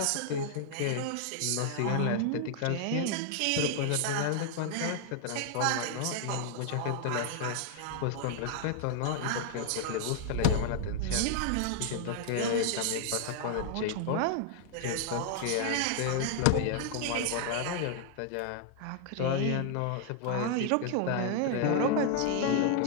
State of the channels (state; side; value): different; both; correlation 0.00